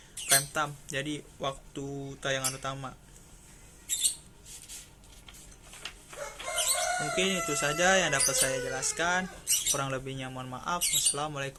prime time, jadi waktu tayangan utama. Mungkin itu saja yang dapat saya jelaskan, kurang lebihnya mohon maaf.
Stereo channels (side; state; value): both; identical; correlation 1.00